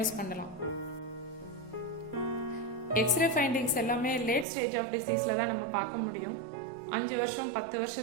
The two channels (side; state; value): left; drops out; at 4.5 s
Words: பண்ணலாம். எக்ஸ்ரே ஃபைண்டிங்ஸ் எல்லாமே லேட் ஸ்டேஜ் ஆஃப் டிசீஸ்ல தான் நம்ம பார்க்க முடியும். 5 வருஷம் 10